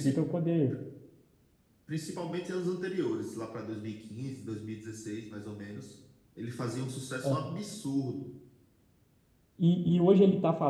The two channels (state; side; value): identical; both; correlation 1.00